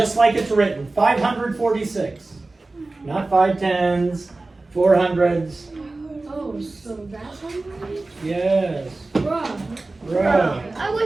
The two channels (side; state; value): left; quieter; 3.2 dB